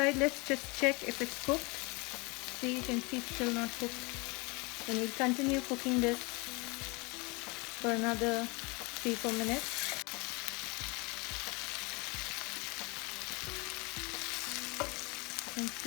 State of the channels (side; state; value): right; quieter; 27.9 dB